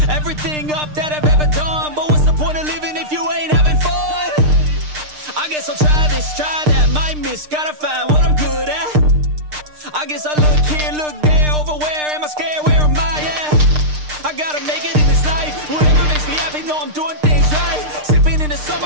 Everything up that I've ever done, but what's the point of living if you ain't having fun? I guess I'll try this, try that, might miss, gotta find what I'm good at. I guess I look here, look there, over where am I scared, where am I at? I gotta make it in this life, whatever makes me happy, know I'm doing things right. Sipping in the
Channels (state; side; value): late; left; 6.6 ms